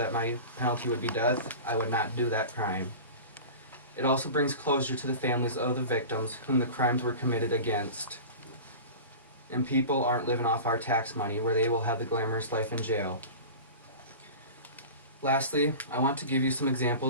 my penalty would be death, I would not do that crime. It also brings closure to the families of the victims whom the crimes were committed against. And people aren't living off our tax money where they will have the glamorous life in jail. Lastly, I want to give you some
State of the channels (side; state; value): both; inverted; correlation -0.34